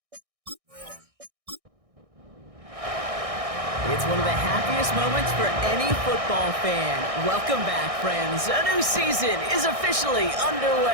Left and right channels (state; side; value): late; left; 1.6 ms